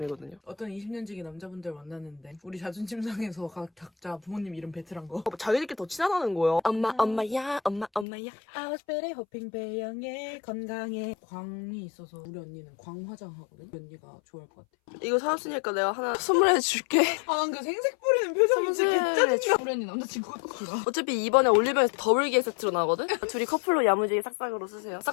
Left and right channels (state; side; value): drops out; right; at 8.1 s